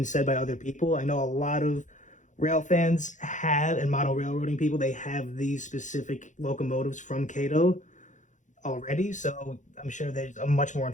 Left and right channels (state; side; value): late; right; 0.36 ms